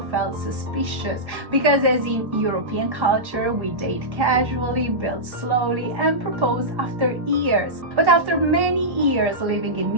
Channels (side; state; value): left; late; 1.1 ms